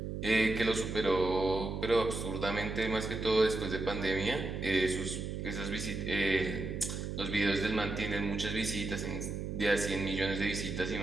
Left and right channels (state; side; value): noise; right; hum, 5 dB below the sound